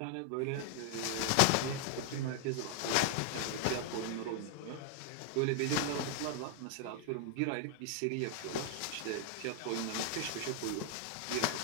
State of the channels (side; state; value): both; different; correlation 0.00